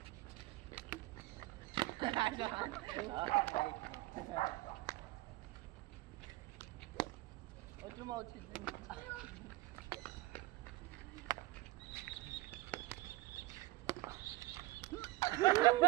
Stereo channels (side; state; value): left; quieter; 19.5 dB